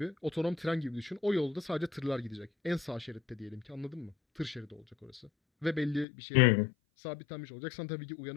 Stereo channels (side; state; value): right; drops out; at 6.1 s